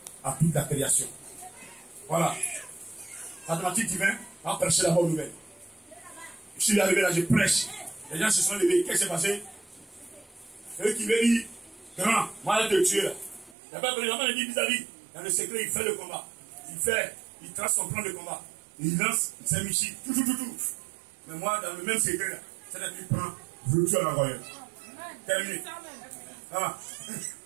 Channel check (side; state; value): left; drops out; at 13.6 s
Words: à toute la création. Voilà. Mathématique divin, on prêcher la bonne nouvelle. Je suis arrivé là, je prêche. Les gens se sont levés. Qu'est-ce qui s'est passé? C'est eux qui veulent dire, grand, moi je te tuer là. Il n'y a pas de vraiment dit vis-à-vis. Dans le secret, il fait le combat. Il trace son plan de combat. Il lance, il s'est mis tout. Mais moi, dans le même secret là, c'est-à-dire qu'il prend, retour à l'envoyeur. Terminé. Ah.